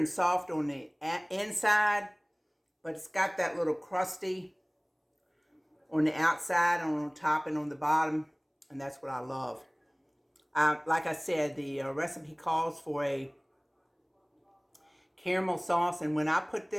soft on the inside, but it's got that little crusty on the outside, on top, and on the bottom, and that's what I love. Like I said, the recipe calls for a caramel sauce, and when I put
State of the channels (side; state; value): both; identical; correlation 1.00